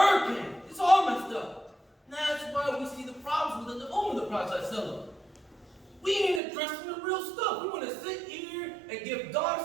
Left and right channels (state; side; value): drops out; left; at 6.4 s